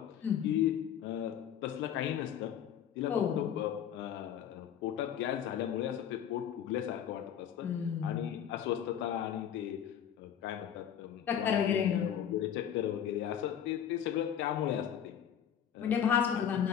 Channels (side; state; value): right; quieter; 9.3 dB